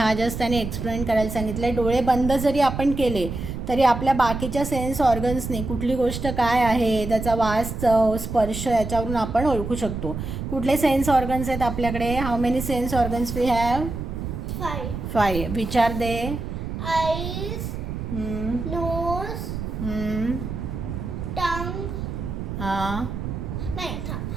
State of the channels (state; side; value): noise; right; rumble, 6 dB below the sound